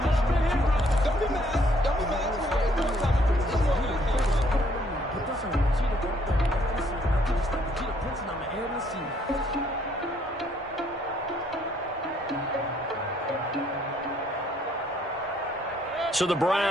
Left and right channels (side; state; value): both; normal; correlation 0.66